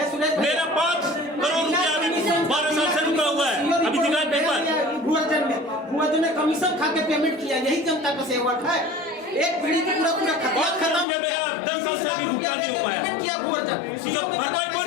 मेरा 5 करोड़ रुपया अभी 12 साल से रुका हुआ है। अभी दिखाए पेपर भुआजन ने कमीशन खा के पेमेंट किया, यही जनता का सेवक है। एक पीढ़ी की पूरा खत्म हो गया। 10 साल से अभी भुगतान नहीं हो पाया। इसका भरपाई कौन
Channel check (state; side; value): drops out; right; at 11.1 s